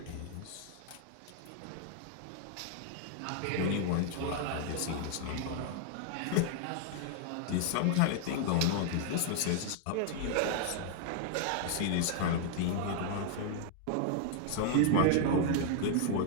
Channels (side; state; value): both; different; correlation 0.00